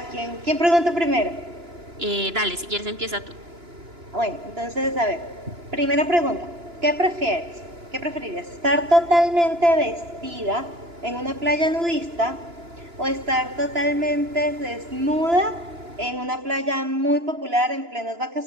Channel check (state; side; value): late; left; 2.9 ms